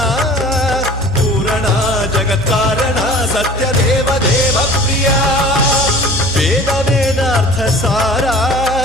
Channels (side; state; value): both; normal; correlation 0.44